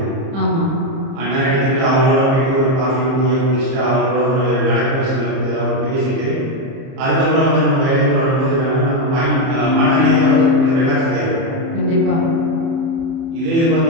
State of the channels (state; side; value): late; left; 30 ms